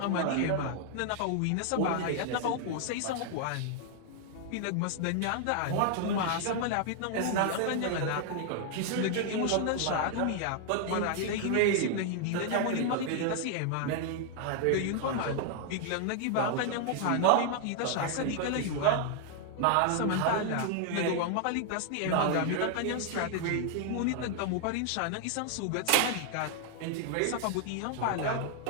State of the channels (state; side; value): different; both; correlation 0.00